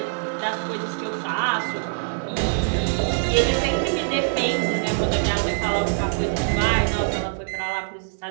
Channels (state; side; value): silent; left; digital silence